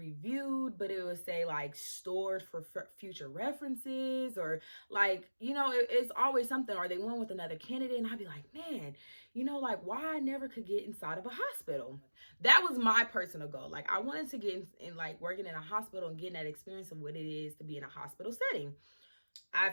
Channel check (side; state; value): both; inverted; correlation -1.00